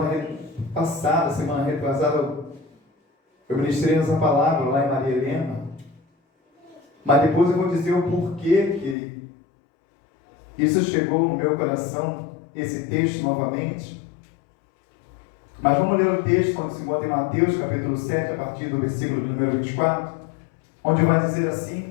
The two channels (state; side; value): drops out; right; at 9.0 s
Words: retrasada, eu ministrei essa palavra lá em Maria Helena. Mas depois eu vou dizer o porquê que isso chegou no meu coração, esse texto novamente. Mas vamos ler o texto onde se encontra em Mateus, capítulo 7, a partir do versículo de número 24, onde vai dizer